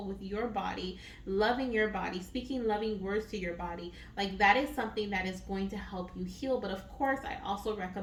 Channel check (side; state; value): both; identical; correlation 1.00